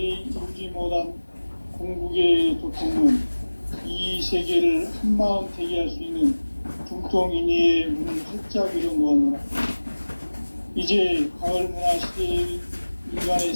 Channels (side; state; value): both; inverted; correlation -1.00